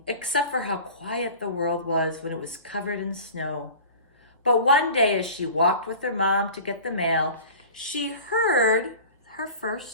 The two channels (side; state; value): both; inverted; correlation -0.40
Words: except for how quiet the world was when it was covered in snow. But one day, as she walked with her mom to get the mail, she heard her